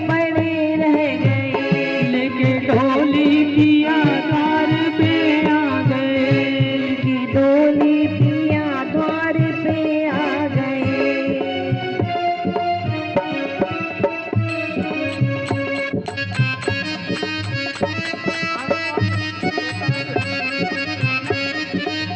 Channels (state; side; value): identical; both; correlation 1.00